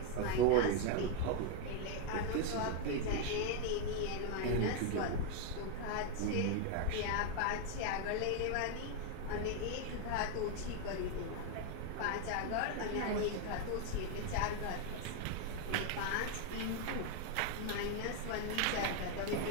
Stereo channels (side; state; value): both; different; correlation 0.01